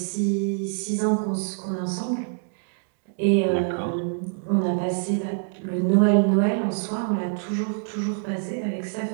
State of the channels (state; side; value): silent; left; 62 dB below the other